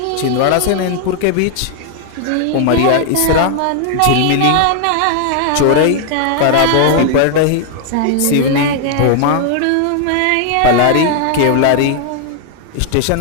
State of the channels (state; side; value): different; both; correlation 0.00